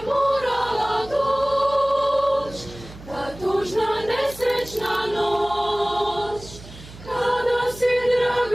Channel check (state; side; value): noise; right; hum, 17 dB below the sound